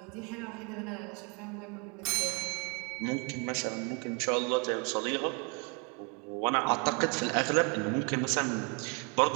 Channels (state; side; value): quieter; left; 34.0 dB